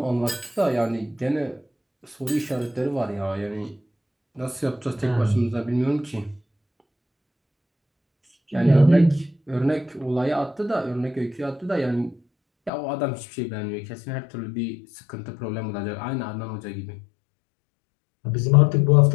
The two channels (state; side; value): drops out; right; at 12.7 s